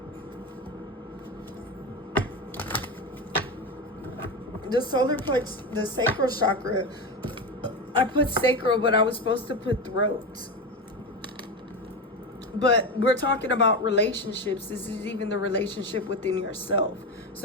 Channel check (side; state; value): both; normal; correlation 0.19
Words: The solar plex, the sacral chakra, I put sacral, but I was supposed to put throat. But we're talking about relationships. This is even the relationship within yourself.